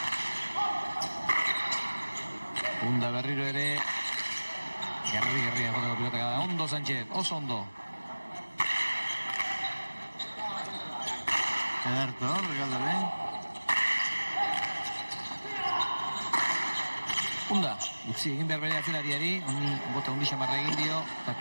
Unda berriro ere gerrian joteko pilotaka da. Ondo Sánchez, oso ondo. Ederto, regalde Unda, utzi egin behar bere atzelariari, honi bota hundi xamarra egin dio, eta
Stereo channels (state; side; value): inverted; both; correlation -1.00